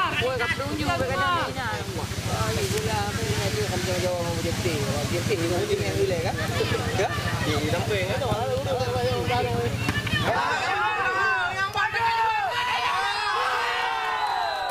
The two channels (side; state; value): both; identical; correlation 1.00